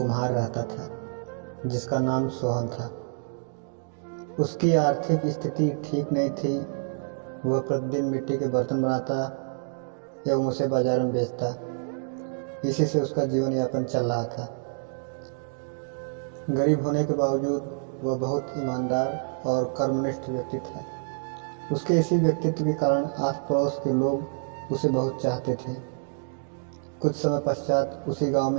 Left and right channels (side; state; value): left; silent; digital silence